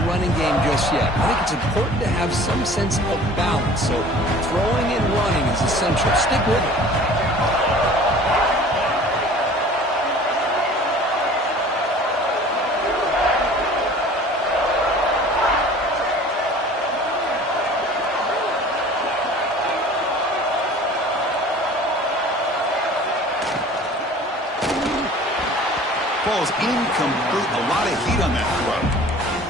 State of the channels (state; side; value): normal; both; correlation 0.46